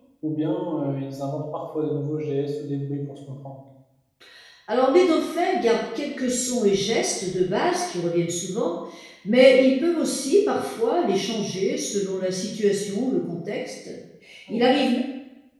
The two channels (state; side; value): identical; both; correlation 1.00